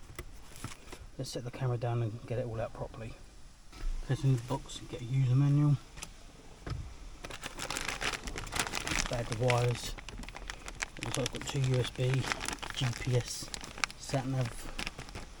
Let's set the camera down and get it all out properly. Get in the box and get a user manual. Bag of wires. Looks like I've got two USB, GPS, sat-nav,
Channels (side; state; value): both; identical; correlation 1.00